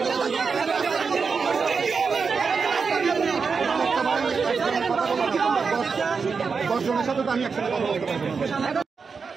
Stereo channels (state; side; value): quieter; left; 5.2 dB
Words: দশজনের সাথে তো আমি একসাথে কথা বলতে পারবো না।